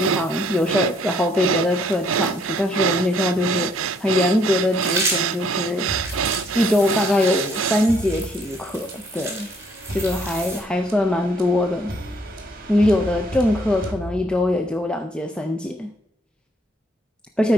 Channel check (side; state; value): both; normal; correlation 0.66